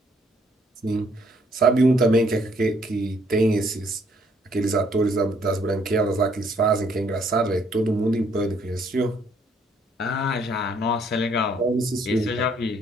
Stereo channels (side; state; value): both; normal; correlation 0.67